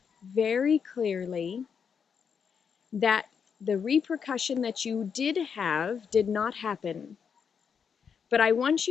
very clearly that the repercussion that you did have did not happen. But I want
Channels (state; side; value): quieter; right; 6.7 dB